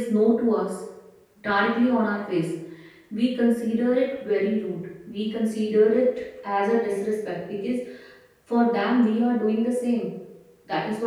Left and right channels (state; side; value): identical; both; correlation 1.00